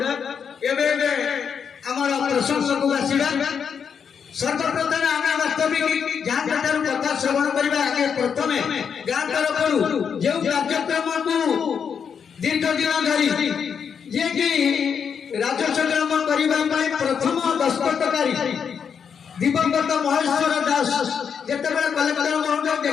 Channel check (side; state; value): right; quieter; 7.0 dB